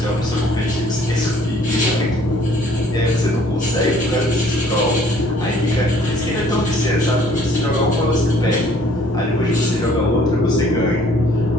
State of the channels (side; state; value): both; normal; correlation 0.58